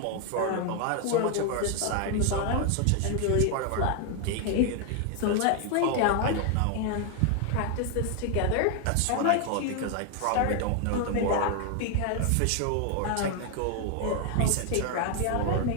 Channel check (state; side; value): different; both; correlation 0.01